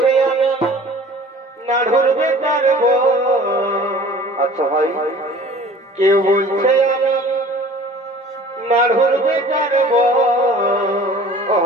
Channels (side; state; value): both; normal; correlation 0.46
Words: আমি নাড়ুর বেটার বউ। আচ্ছা ভাই, কেউ বলছে আমি নাড়ুর বেটার বউ।